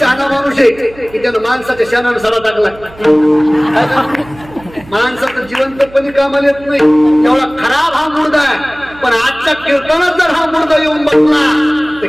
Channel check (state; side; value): noise; right; hum, 21 dB below the sound